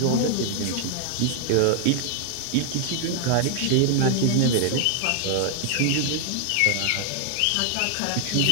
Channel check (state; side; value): different; both; correlation 0.00